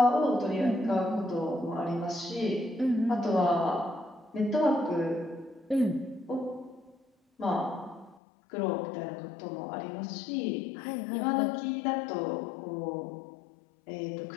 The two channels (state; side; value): drops out; right; at 8.2 s